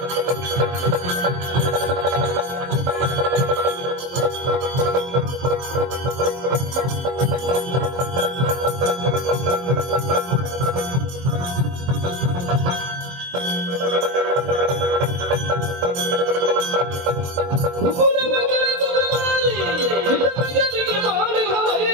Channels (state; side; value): late; left; 23 ms